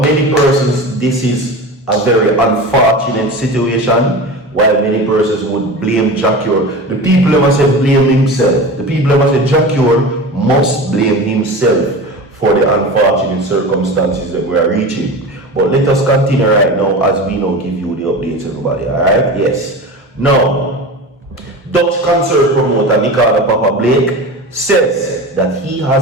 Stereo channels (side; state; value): both; normal; correlation 0.30